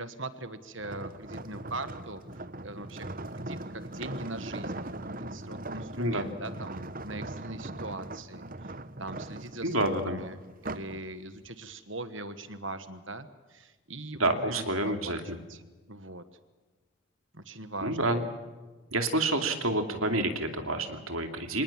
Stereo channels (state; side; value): normal; both; correlation 0.00